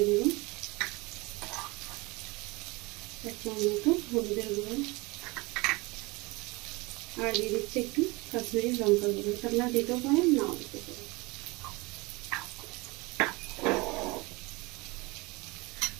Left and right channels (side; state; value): left; quieter; 24.7 dB